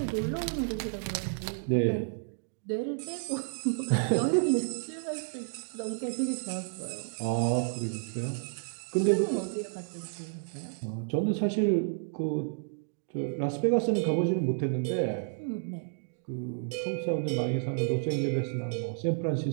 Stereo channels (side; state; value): left; silent; digital silence